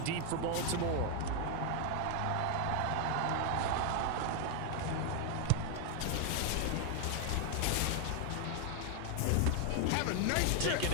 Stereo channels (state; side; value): different; both; correlation 0.00